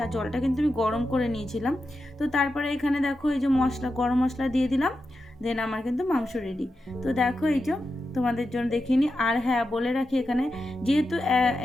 আর জলটা কিন্তু আমি গরম করে নিয়েছিলাম। তো তারপরে এখানে দেখো এই যে গরম মশলা দিয়ে দিলাম, দেন আমার কিন্তু মাংস রেডি। তো দেখো এই যে তোমাদের জন্য দেখিয়ে নিই। আর হ্যাঁ, বলে রাখি, এখানে যেহেতু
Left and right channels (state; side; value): normal; both; correlation 0.89